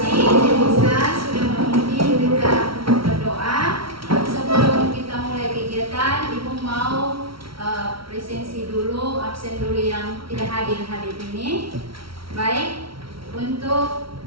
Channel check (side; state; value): left; late; 0.75 ms